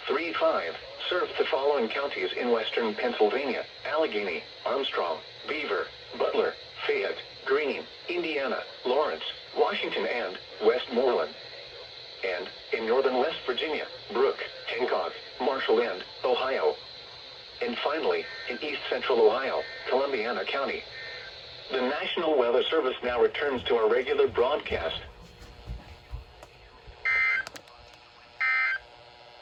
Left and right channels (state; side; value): identical; both; correlation 1.00